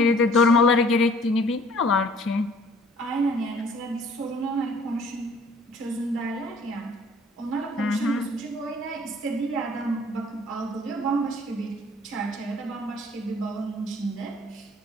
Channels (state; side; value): normal; both; correlation 0.55